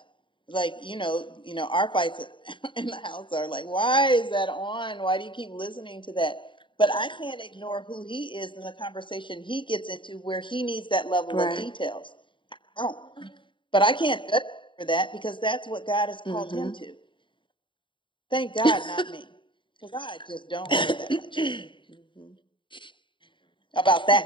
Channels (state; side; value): late; right; 0.24 ms